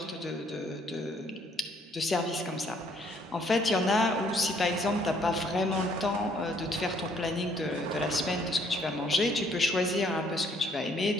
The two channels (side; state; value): both; normal; correlation 0.65